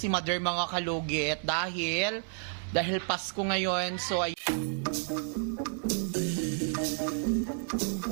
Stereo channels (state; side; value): silent; left; digital silence